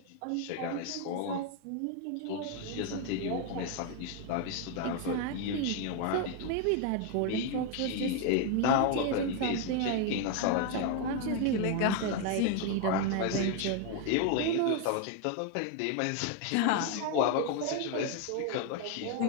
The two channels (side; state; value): both; different; correlation 0.01